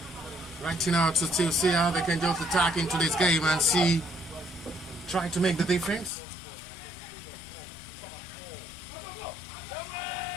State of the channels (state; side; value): drops out; right; at 6.1 s